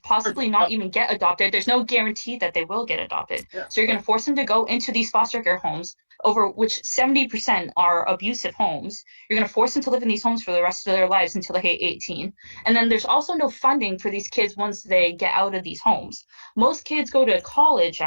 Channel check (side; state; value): both; inverted; correlation -1.00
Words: not even get adopted. There's no guarantee that they will get adopted. So you're going to force them to go into these foster care homes, over which 70% are abusive homes. You're going to force them to live in these homes for the rest of their lives until they hit 18. And then there's also no funding for these kids once they get out of these homes. Most kids go to college